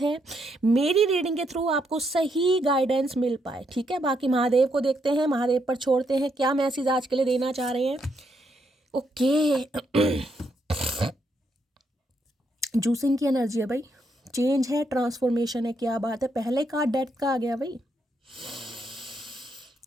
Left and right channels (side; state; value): both; normal; correlation 0.77